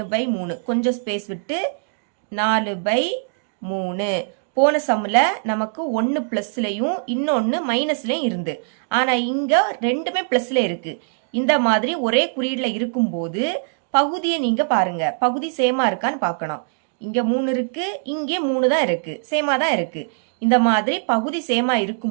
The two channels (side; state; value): left; silent; digital silence